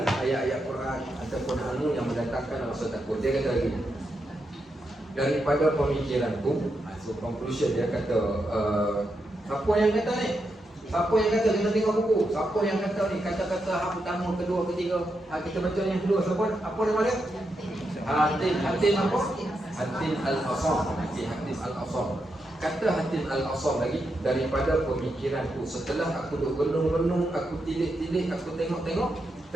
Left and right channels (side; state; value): both; normal; correlation 0.84